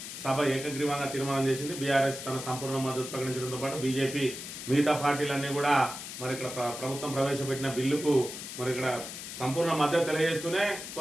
సభ ఏకగ్రీవంగా తీర్మానం చేసింది. బీఆర్ఎస్ తన సంపూర్ణ మద్దతు ప్రకటించడంతో పాటు బీజేపీ మిగతా పార్టీలన్నీ కూడా మరి ఇక్కడ ప్రభుత్వం ప్రవేశపెట్టిన బిల్లుకు మరి ఇక్కడ సంపూర్ణ మద్దతు తెలియజేస్తూనే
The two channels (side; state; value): left; noise; hiss, 9 dB below the sound